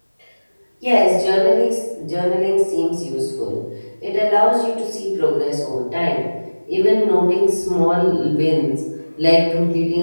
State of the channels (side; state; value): both; inverted; correlation -1.00